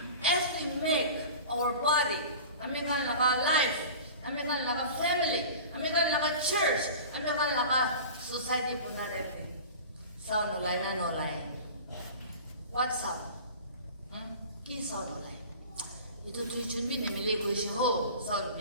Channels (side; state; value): both; inverted; correlation -0.37